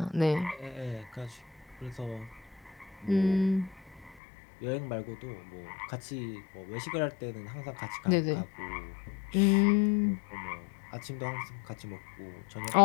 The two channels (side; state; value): right; drops out; at 4.2 s